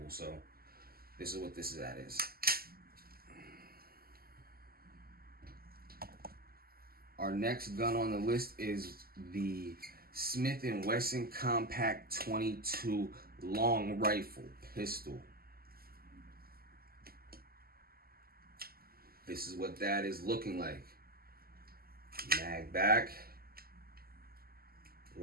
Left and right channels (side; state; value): left; late; 0.44 ms